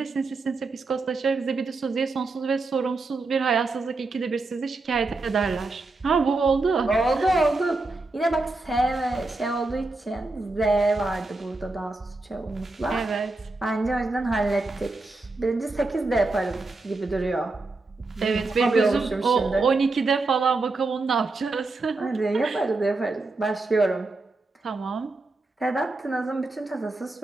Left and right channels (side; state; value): left; quieter; 3.3 dB